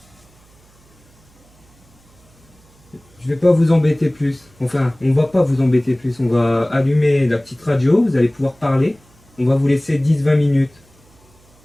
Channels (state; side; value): noise; right; hum, 30 dB below the sound